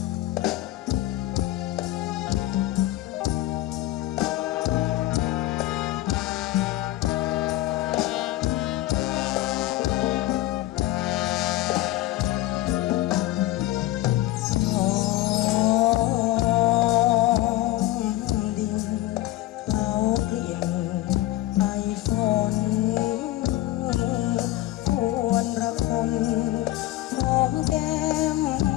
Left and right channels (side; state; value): right; quieter; 15.8 dB